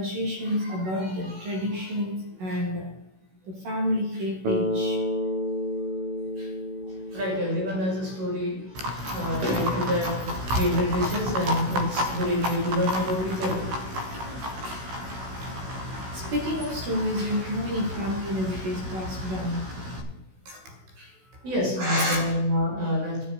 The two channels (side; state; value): left; late; 16 ms